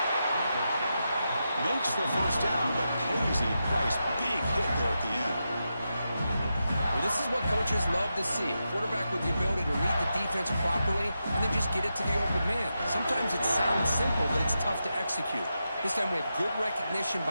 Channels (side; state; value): both; inverted; correlation -0.88